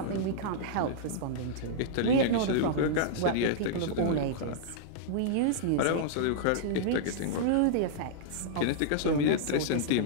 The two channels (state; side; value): different; both; correlation -0.02